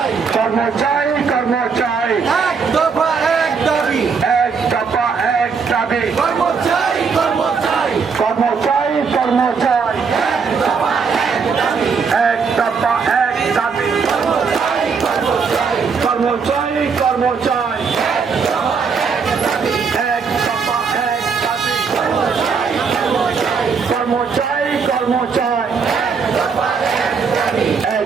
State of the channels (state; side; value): quieter; left; 5.6 dB